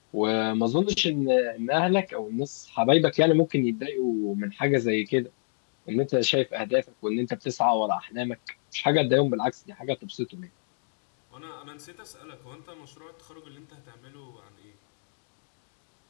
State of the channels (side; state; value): right; silent; digital silence